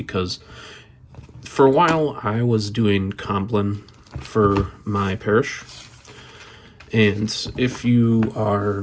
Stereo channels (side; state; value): both; identical; correlation 1.00